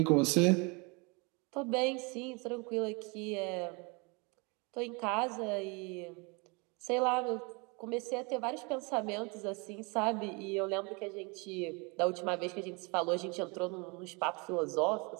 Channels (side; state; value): left; quieter; 29.9 dB